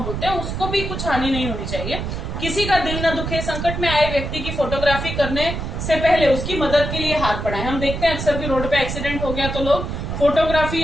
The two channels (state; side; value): noise; right; rumble, 4 dB below the sound